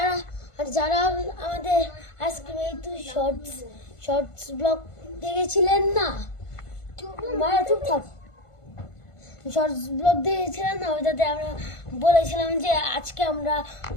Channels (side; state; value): right; late; 1.5 ms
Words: যারা আমাদের আইসক্রিম এই তো শর্টস ব্লগ দেখেছিলেন না, মারা চুপ থাক, শর্টস ব্লগ দেখেছিলেন না, ওইটাতে আমরা বলেছিলাম যে আজকে আমরা